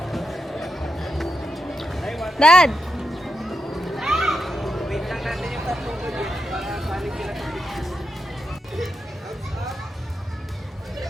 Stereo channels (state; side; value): normal; both; correlation 0.86